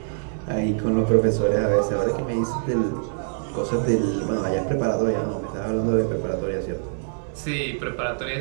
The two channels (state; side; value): silent; left; digital silence